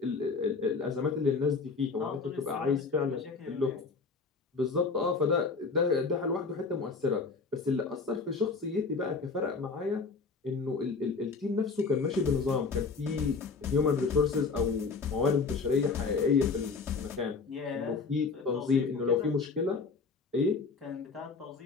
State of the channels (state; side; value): quieter; right; 4.6 dB